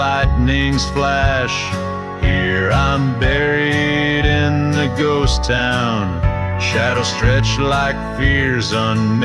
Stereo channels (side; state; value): both; identical; correlation 1.00